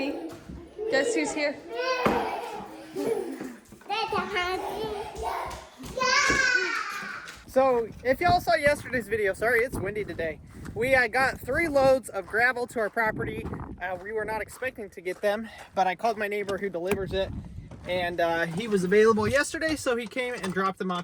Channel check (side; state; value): both; identical; correlation 1.00